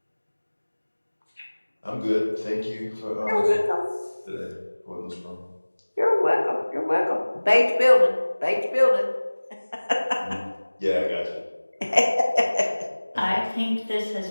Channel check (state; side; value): inverted; both; correlation -1.00